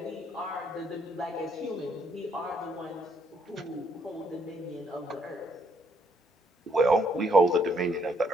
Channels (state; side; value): normal; both; correlation 0.70